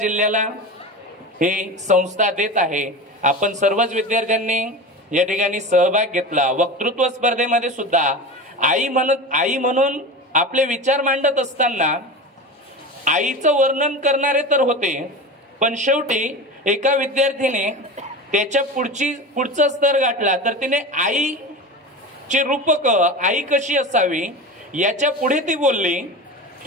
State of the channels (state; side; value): normal; both; correlation 0.28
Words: ही संस्था देत आहे. आपण सर्वच विद्यार्थ्यांनी या ठिकाणी सहभाग घेतला. वक्तृत्व स्पर्धेमध्ये सुद्धा आई म्हणून आपले विचार मांडत असताना आईचं वर्णन करणारे तर होते, पण शेवटी एका विद्यार्थीने त्याच्या पुढचा स्तर गाठला तर तिने आईचे रूपक, आई कशी असावी याच्या पुढे ती बोलली